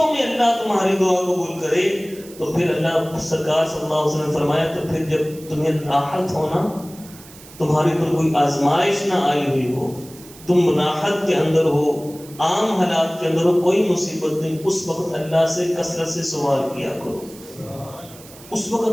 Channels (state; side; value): noise; right; hiss, 20 dB below the sound